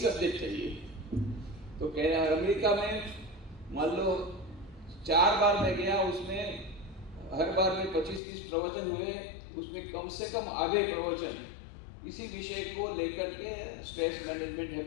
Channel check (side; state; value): right; drops out; at 8.2 s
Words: चाहिए। तो कह रहे हैं अमेरिका में मान लो 4 बार मैं गया, उसमें हर बार में 25-30 प्रवचन हुए, उसमें कम से कम आधे प्रवचन इसी विषय को लेकर के, स्ट्रेस मैनेजमेंट,